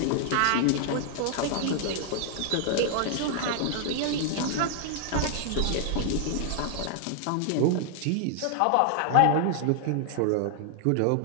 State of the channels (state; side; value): different; both; correlation 0.00